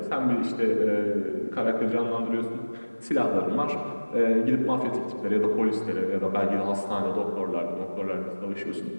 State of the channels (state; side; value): inverted; both; correlation -1.00